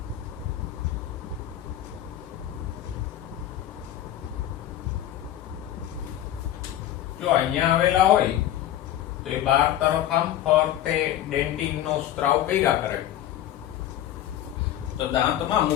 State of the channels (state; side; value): quieter; right; 12.1 dB